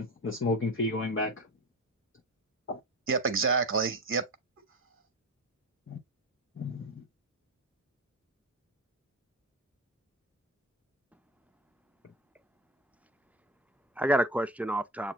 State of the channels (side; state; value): both; normal; correlation 0.23